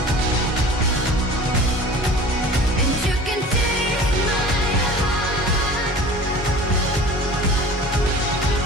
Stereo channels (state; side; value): normal; both; correlation 0.41